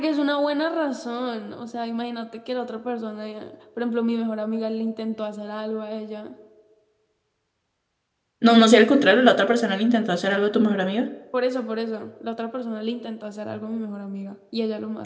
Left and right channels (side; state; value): both; identical; correlation 1.00